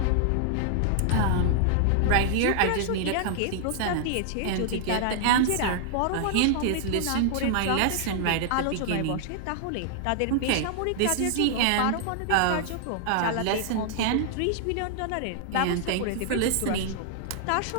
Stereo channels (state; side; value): different; both; correlation -0.01